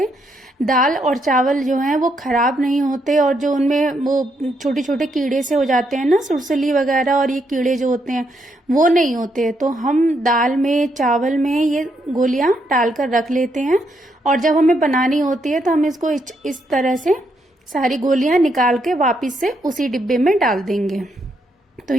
दाल और चावल जो हैं वो खराब नहीं होते और जो उनमें वो छोटे छोटे कीड़े से हो जाते हैं ना, सुरसली वगैरह, और ये कीड़े जो होते हैं वो नहीं होते। तो हम दाल में चावल में ये गोलियां डालकर रख लेते हैं और जब हमें बनानी होती है तो हम इसको इस तरह से सारी गोलियां निकाल के वापिस से उसी डिब्बे में डाल देंगे। तो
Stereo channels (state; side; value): normal; both; correlation 0.77